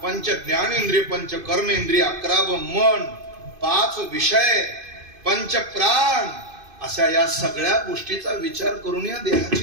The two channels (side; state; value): left; late; 2.5 ms